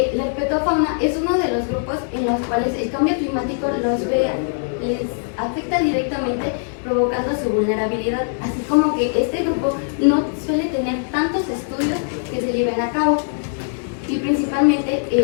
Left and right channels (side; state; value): right; silent; digital silence